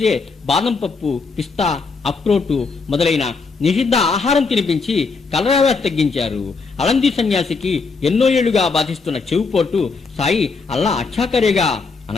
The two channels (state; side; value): quieter; right; 4.5 dB